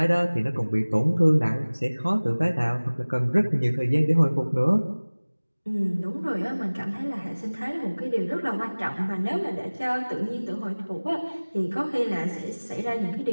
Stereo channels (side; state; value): both; inverted; correlation -1.00